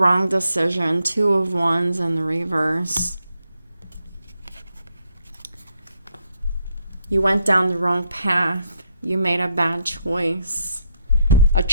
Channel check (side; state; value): both; inverted; correlation -0.77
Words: decision. Two of Wands in the reverse. You went down the wrong path. You made a bad choice. A